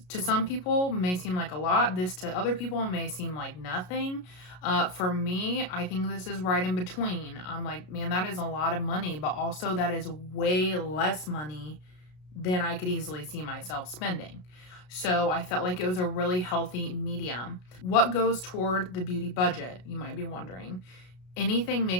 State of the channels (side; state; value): right; late; 33 ms